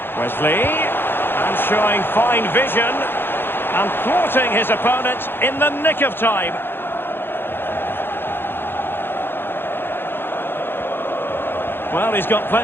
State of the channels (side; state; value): right; late; 0.10 ms